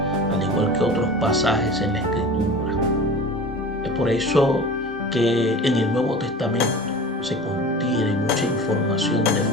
al igual que otros pasajes en la Escritura. Es por eso que en el Nuevo Testamento se contiene mucha información de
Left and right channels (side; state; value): both; normal; correlation 0.36